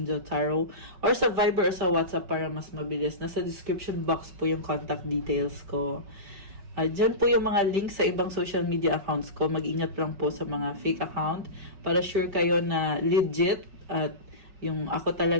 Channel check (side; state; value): left; late; 5.4 ms